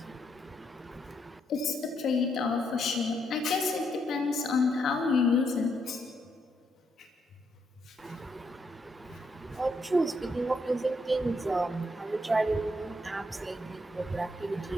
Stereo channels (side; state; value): both; normal; correlation 0.77